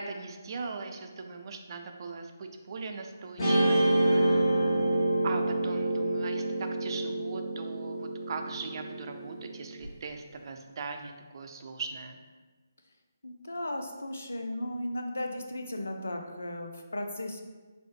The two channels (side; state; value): both; inverted; correlation -0.88